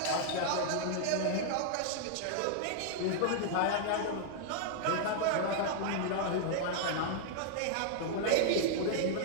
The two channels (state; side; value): different; both; correlation -0.01